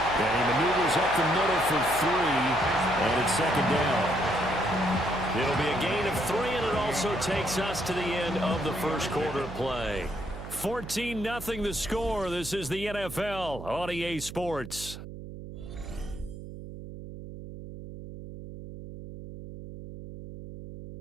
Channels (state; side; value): noise; right; hum, 11 dB below the sound